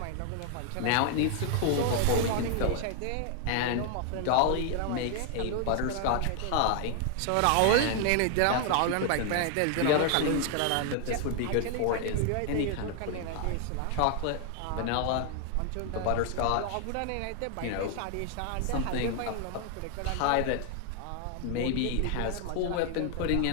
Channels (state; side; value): different; both; correlation 0.00